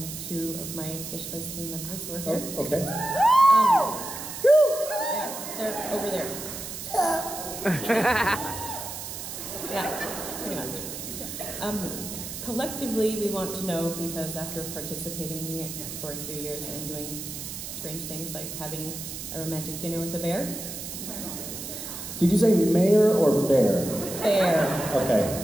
2 of my Gishwas team members who are here. Oh, okay. Yeah, they're over there. Yeah, pretty much. Collectively, we want to know, because after participating for a few years and doing strange things like having a romantic dinner with a bear. Did you say mayor or bear? Bear. Okay,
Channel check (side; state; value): right; noise; hiss, 8 dB below the sound